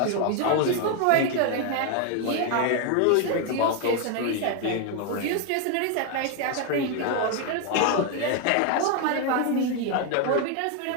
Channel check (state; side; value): different; both; correlation 0.01